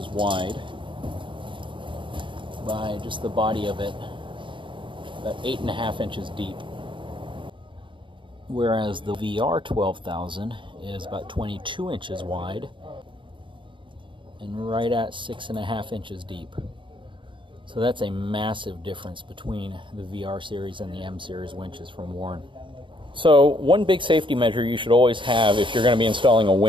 wide by just the body of it, about 8.5 inches deep. Whereas the VR 12,000 is about 22 inches wide and right at 6.5 inches deep. So that's a massive difference between the VR series and the M series winches from Warn. So one big safety measure you should always have if you're going to be installing a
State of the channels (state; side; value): late; left; 0.24 ms